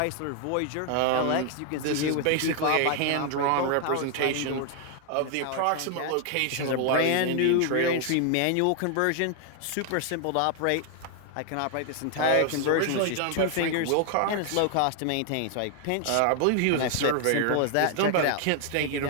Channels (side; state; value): both; different; correlation 0.00